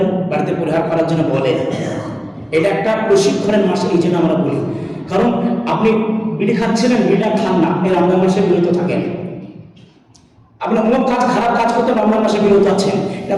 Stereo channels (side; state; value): both; identical; correlation 1.00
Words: বাড়িতে পরিহার করার জন্য বলেন, এটা একটা প্রশিক্ষণের মাস। এই জন্য আমরা বলি, কারণ আপনি বিড়ি খাচ্ছিলেন, বিড়িটা খান না, এই রমজান মাসে বিরত থাকেন। আপনি অনেক কাজ, খারাপ কাজ করতে রমজান মাসে বিরত আছেন, এটা